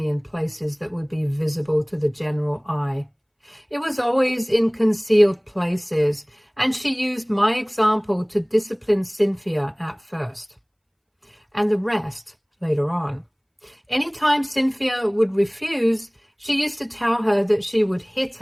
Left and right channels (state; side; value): identical; both; correlation 1.00